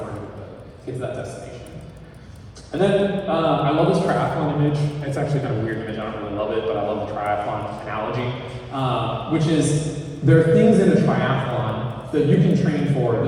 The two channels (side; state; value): both; identical; correlation 1.00